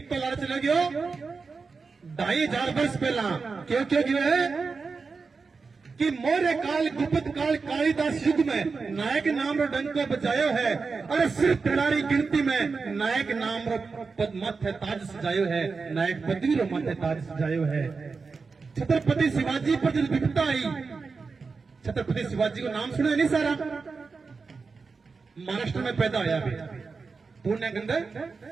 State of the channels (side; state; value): left; quieter; 4.6 dB